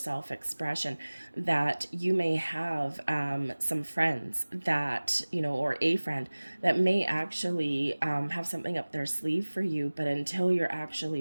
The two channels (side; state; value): both; inverted; correlation -1.00